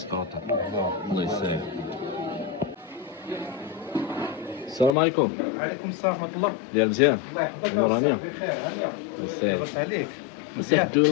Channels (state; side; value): drops out; right; at 4.9 s